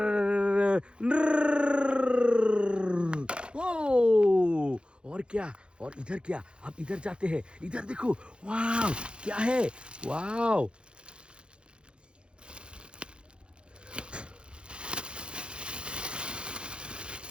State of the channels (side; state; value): left; late; 0.055 ms